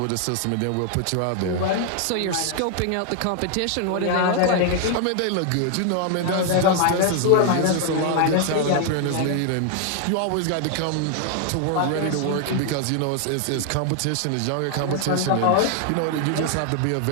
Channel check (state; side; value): different; both; correlation 0.00